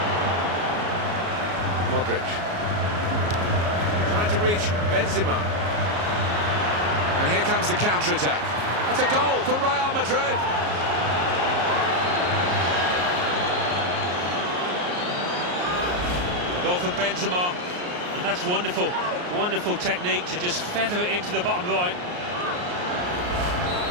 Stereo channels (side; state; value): left; late; 34 ms